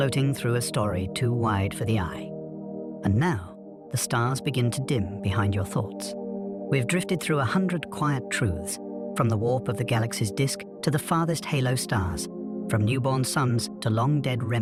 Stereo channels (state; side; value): identical; both; correlation 1.00